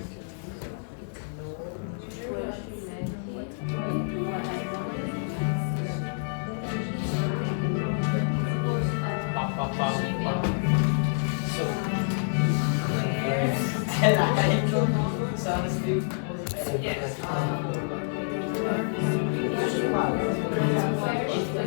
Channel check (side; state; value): right; silent; digital silence